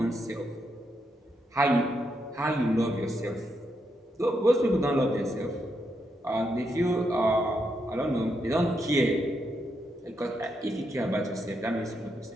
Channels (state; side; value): normal; both; correlation 0.81